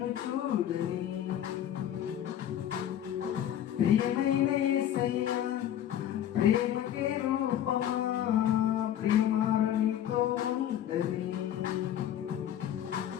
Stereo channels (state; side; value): quieter; right; 10.9 dB